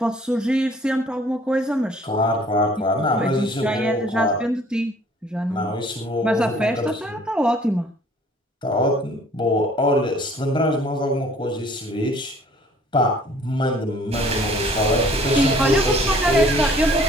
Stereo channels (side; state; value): both; normal; correlation 0.55